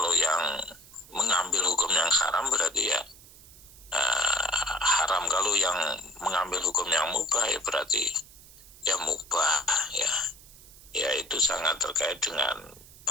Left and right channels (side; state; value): right; noise; hiss, 21 dB below the sound